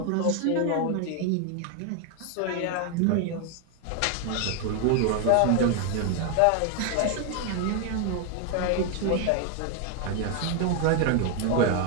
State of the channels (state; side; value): different; both; correlation 0.01